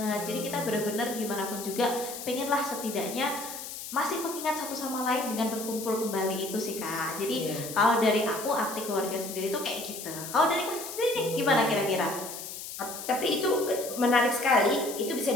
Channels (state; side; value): noise; left; hiss, 9 dB below the sound